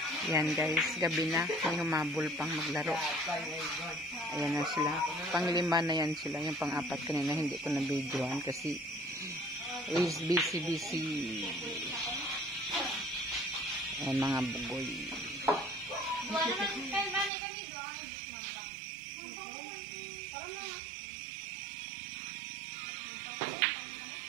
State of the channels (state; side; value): drops out; left; at 17.3 s